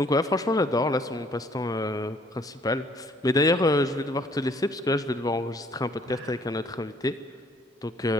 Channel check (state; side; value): normal; both; correlation 0.61